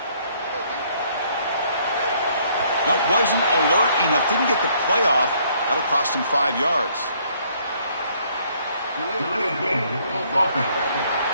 That wasn't alert enough. Didn't get the play off. That'll cost him 5 yards.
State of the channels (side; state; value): both; inverted; correlation -0.65